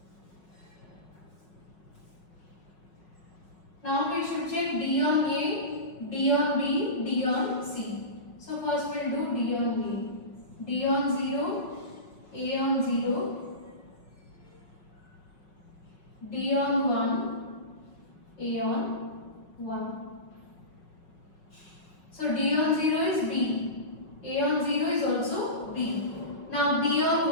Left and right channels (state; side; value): late; right; 5.4 ms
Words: Now we should check D on A, D on B, D on C. So first we will do D on A. D on 0, A on 0, D on 1, A on 1. So D on 0 is B, A on 0 is also B. Now D on